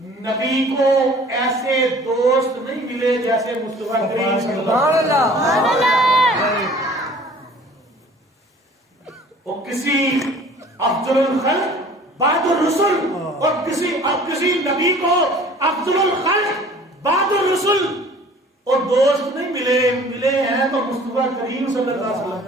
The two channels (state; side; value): normal; both; correlation 0.49